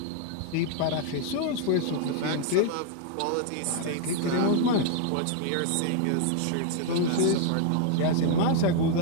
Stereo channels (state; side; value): different; both; correlation 0.00